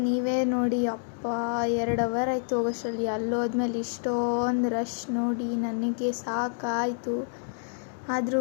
ನೀವೇ ನೋಡಿ, ಅಪ್ಪ 2 ಅವರ್ ಆಯಿತು ಹೋಗೋಷ್ಟರಲ್ಲಿ. ಅಲ್ಲೋದ್ಮೇಲೆ ಇಷ್ಟೊಂದು ರಶ್ ನೋಡಿ ನನಗೆ ಸಾಕಾಯಿತು. ಆದರೂ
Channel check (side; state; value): right; silent; digital silence